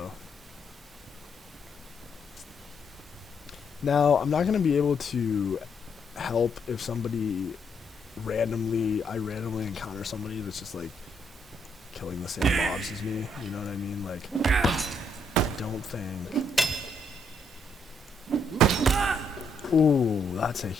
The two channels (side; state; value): both; normal; correlation 0.74